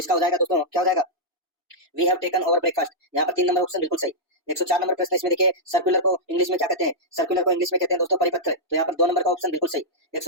हो जाएगा दोस्तों, क्या हो जाएगा, we have taken over breakfast. यहाँ पर 3 नंबर ऑप्शन बिल्कुल सही। 104 नंबर प्रश्न इसमें देखिए, सर्कुलर को इंग्लिश में क्या कहते हैं, सर्कुलर को इंग्लिश में कहते हैं दोस्तों परिपत्र। तो यहाँ पर 2 नंबर का ऑप्शन बिल्कुल सही।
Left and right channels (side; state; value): both; normal; correlation -0.09